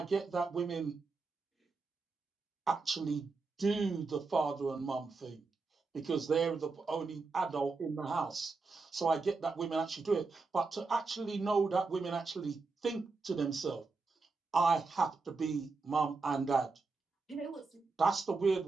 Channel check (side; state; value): left; quieter; 4.1 dB